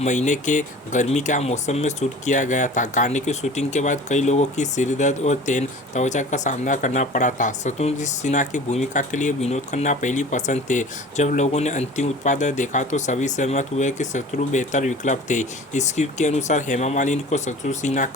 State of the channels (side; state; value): both; normal; correlation 0.42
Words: महीने के गर्मी के मौसम में शूट किया गया था। गाने की शूटिंग के बाद कई लोगों की सिरदर्द और तेन त्वचा का सामना करना पड़ा था। शत्रुघ्न सिन्हा की भूमिका के लिए विनोद खन्ना पहली पसंद थे। जब लोगों ने अंतिम उत्पाद देखा तो सभी सहमत हुए कि शत्रु बेहतर विकल्प थे। स्क्रिप्ट के अनुसार हेमा मालिनी को शत्रुघ्न सिन्हा